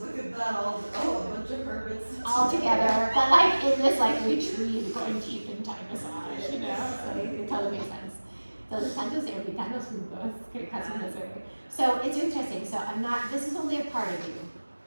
look at that, all a bunch of hermits. All together, but like in this like retreat, going deep in time massage, so it totally makes sense. So the tantos y ermitaños juntos, que casi no se ve. So it's interesting. So this is only a part of you.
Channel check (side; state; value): both; inverted; correlation -1.00